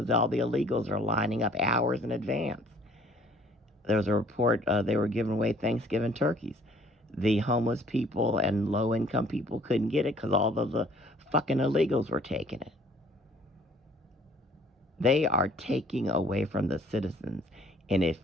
all the illegals are lining up hours in advance. There was a report they were giving away Thanksgiving turkeys. The homeless people and low-income people couldn't get it because all of the fucking illegals were taking it. They are taking away from the citizens. And if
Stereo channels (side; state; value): both; normal; correlation 0.57